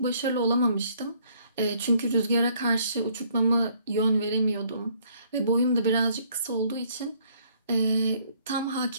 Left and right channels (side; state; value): both; inverted; correlation -0.64